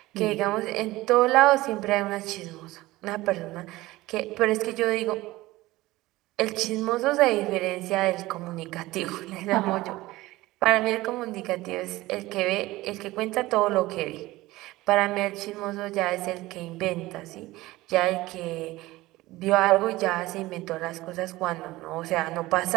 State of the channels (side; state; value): left; quieter; 18.5 dB